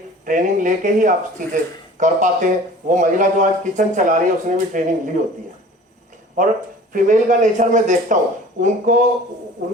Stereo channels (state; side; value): normal; both; correlation 0.45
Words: लेके ही आप चीजें कर पाते हैं। वो महिला जो आज किचन चला रही है उसने भी ट्रेनिंग ली होती है। और फीमेल का नेचर में देखता हूं,